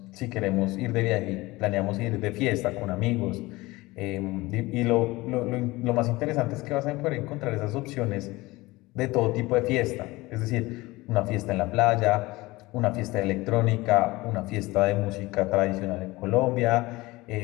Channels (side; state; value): right; quieter; 20.8 dB